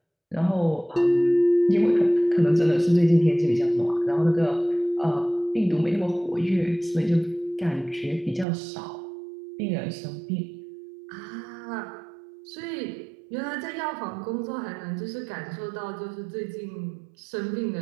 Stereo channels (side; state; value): left; drops out; at 8.5 s